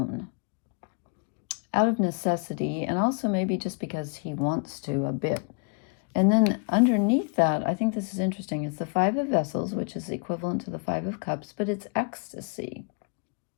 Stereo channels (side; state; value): right; quieter; 36.1 dB